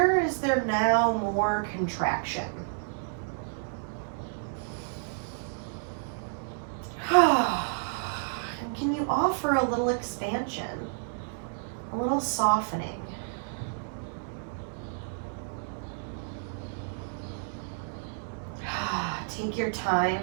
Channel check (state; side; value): silent; left; digital silence